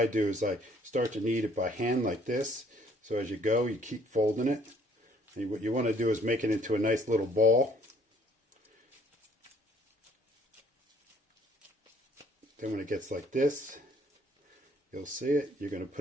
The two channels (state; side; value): normal; both; correlation 0.61